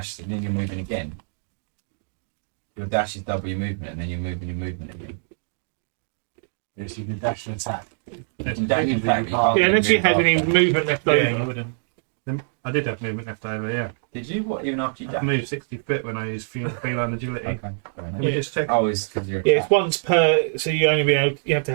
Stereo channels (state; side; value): silent; left; 62 dB below the other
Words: and then you're moving again. Your dash is double your movement and then you're moving your movement again. Yes, you can dash and attack. You can dash and Usually attack, you but can't. you Yeah, can't unless you move had any after. movement left over. Yeah, you wouldn't. I did have movement left over, yeah. Did you? What, even after you I dashed? moved 60 foot when I used feline agility. Okay, fair Let enough. me just check. Oh, it's because you're Yeah, it's once per. So you only be able. You have to